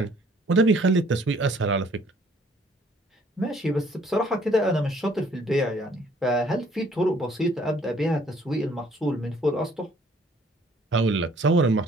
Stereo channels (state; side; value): normal; both; correlation 0.60